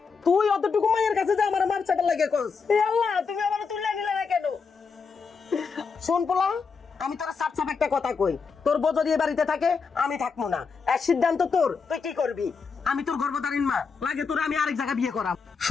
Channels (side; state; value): right; quieter; 5.3 dB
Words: তুই অতটুকু মায়ের কাছে যে আমার মার চাটা লাগে কস, এ আল্লাহ তুমি আমার তুলে নিলে না কেন? শোন পোলা, আমি তোর সাপ সাপ একটা কথা কই, তোর বউ যদি এ বাড়িতে থাকে আমি থাকবো না, এক সিদ্ধান্ত তোর, তুই কি করবি? আমি তোর গর্ভধারীণ মা, লাগে তোর আমি আরেক জায়গা বিয়ে করাম।